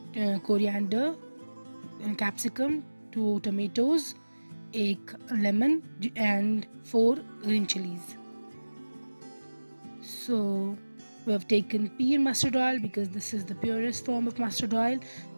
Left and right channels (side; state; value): both; inverted; correlation -1.00